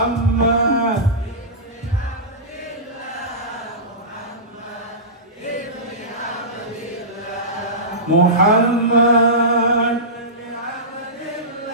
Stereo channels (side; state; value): both; normal; correlation -0.19